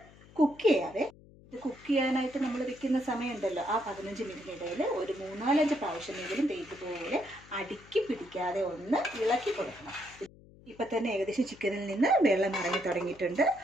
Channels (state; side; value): noise; left; hum, 23 dB below the sound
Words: കുക്ക് ചെയ്യാവേ. ഇത് കുക്ക് ചെയ്യാനായിട്ട് നമ്മൾ വെക്കുന്ന സമയമുണ്ടല്ലോ, ആ 15 മിനിറ്റിനിടയിൽ ഒരു 3-4 പ്രാവശ്യമെങ്കിലും ഇതുപോലെ അടുക്കി പിടിക്കാതെ ഒന്ന് ഇളക്കി കൊടുക്കണം. ഇപ്പം തന്നെ ഏകദേശം ചിക്കനിൽ നിന്ന് വെള്ളം ഇറങ്ങി തുടങ്ങിയിട്ടുണ്ട്.